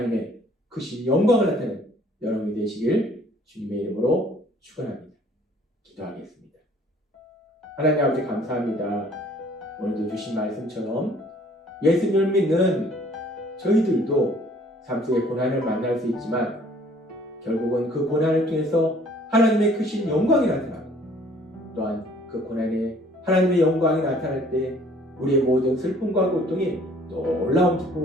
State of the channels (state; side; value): normal; both; correlation 0.57